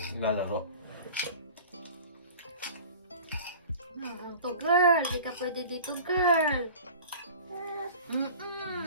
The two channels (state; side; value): inverted; both; correlation -0.41